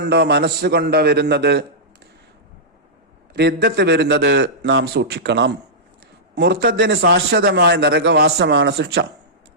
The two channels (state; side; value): normal; both; correlation -0.14